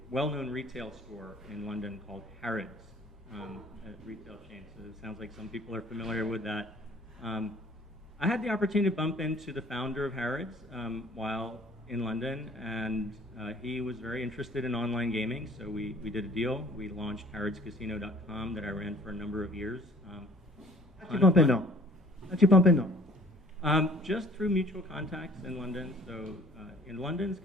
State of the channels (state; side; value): normal; both; correlation 0.53